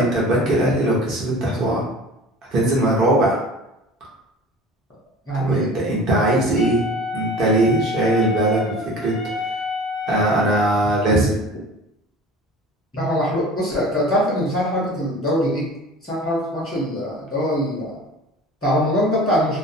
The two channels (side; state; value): both; normal; correlation 0.41